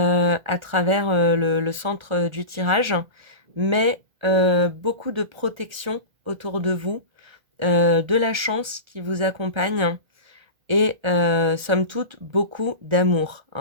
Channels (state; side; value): late; left; 1.7 ms